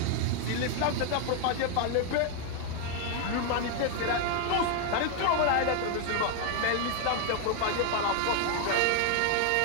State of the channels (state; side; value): different; both; correlation 0.01